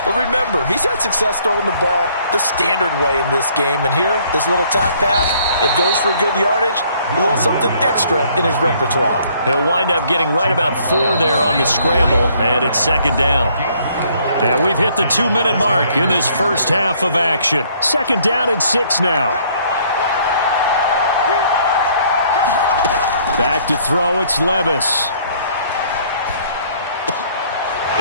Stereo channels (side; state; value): both; inverted; correlation -0.62